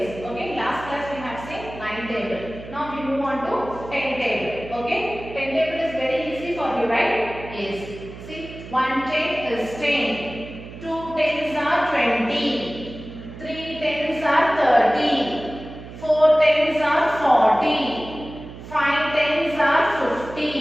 Okay, last class we have seen 9 table. Now we move on to 10 table. Okay, 10 table is very easy for you, right? Yes. See, 1 10 is 10, 2 tens are 20, 3 tens are 30, 4 tens are 40. 5 tens are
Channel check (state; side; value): noise; right; hum, 14 dB below the sound